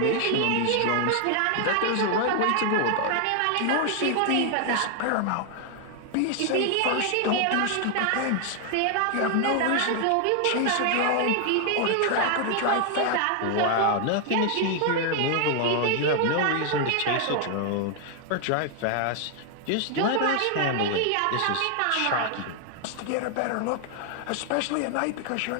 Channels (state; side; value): different; both; correlation 0.00